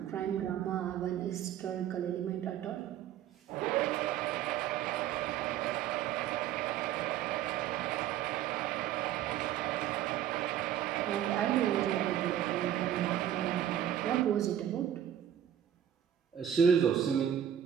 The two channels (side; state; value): left; quieter; 10.3 dB